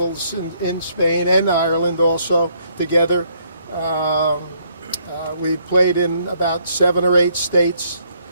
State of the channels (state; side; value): inverted; both; correlation -0.68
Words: in Spain and Ireland also together. We played in about 7 or 8 states,